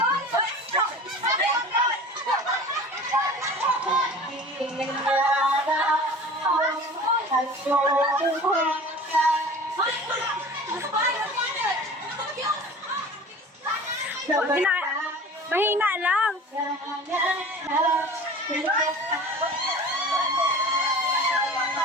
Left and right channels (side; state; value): both; normal; correlation 0.40